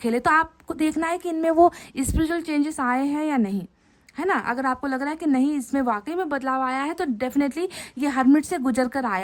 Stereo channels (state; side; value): identical; both; correlation 1.00